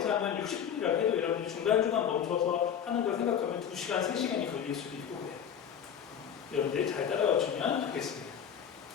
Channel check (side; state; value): right; quieter; 8.4 dB